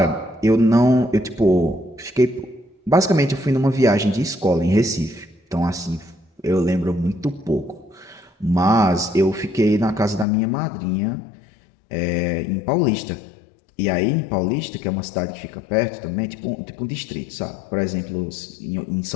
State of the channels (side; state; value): right; drops out; at 10.2 s